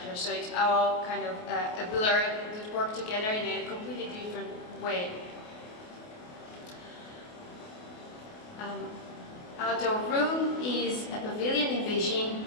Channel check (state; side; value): late; right; 28 ms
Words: So it's all kind of a blur that work together in a completely different way. Outdoor room is a pavilion in Beijing,